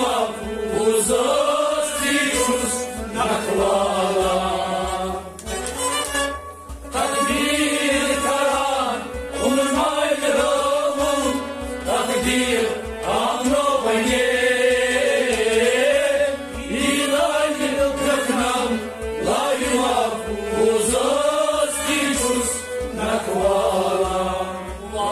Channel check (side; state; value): both; identical; correlation 1.00